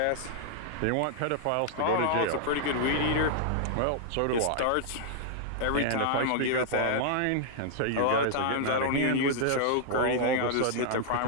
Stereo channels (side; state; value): both; different; correlation -0.01